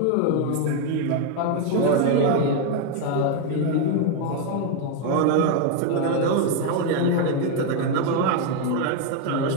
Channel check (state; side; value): different; both; correlation 0.01